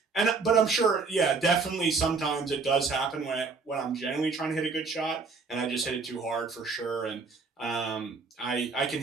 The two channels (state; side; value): quieter; left; 4.5 dB